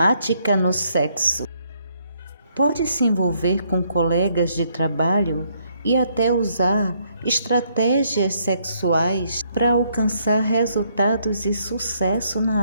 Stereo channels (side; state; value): both; inverted; correlation -0.72